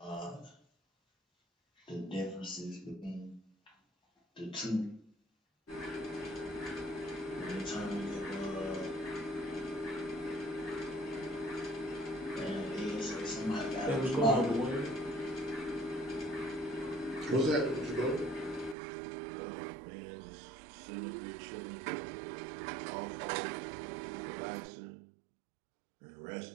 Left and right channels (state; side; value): drops out; left; at 18.8 s